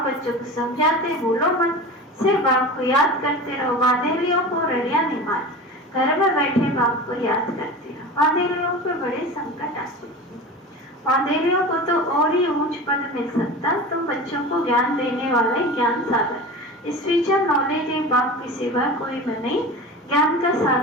बच्चों को समझाते, बोलो मत, सिर्फ बाप को याद करते रहो। वादेलियों को रड़िया नहीं मार, घर में बैठे बाप को याद करते रहो। वादेलियों पे बड़े संकट आते, वादेलियों को तो और ही ऊंच पद मिल सकता। तुम बच्चों को ज्ञान देने वाले ज्ञान सागर, स्पिरिचुअल नॉलेज एक बाप के सिवा कोई में नहीं। ज्ञान का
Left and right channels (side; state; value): both; normal; correlation 0.32